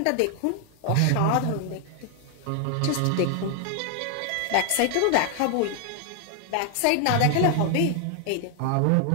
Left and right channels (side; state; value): both; different; correlation 0.00